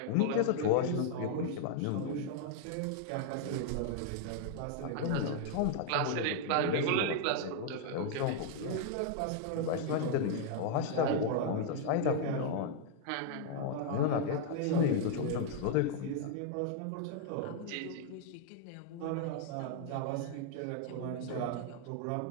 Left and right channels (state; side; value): different; both; correlation 0.00